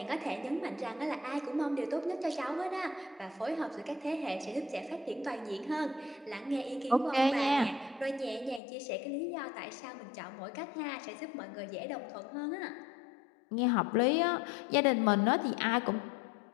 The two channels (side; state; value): right; drops out; at 8.6 s